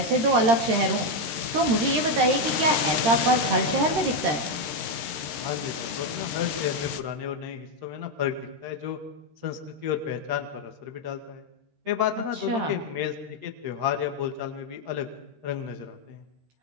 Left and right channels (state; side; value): late; left; 13 ms